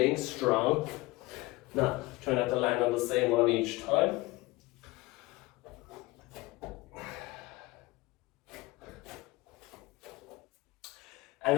strong. Now, try not to land on the same one each time. And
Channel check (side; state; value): right; quieter; 20.8 dB